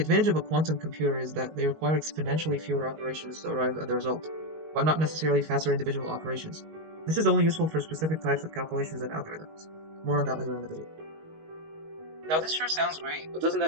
of a quantum computer is that they require exponentially fewer operations to arrive at the result, but not necessarily faster individual operations. This is only useful for specific types of calculations and algorithms. More on that later in the video. Now this sure sounds great, but doesn't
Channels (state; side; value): late; left; 19 ms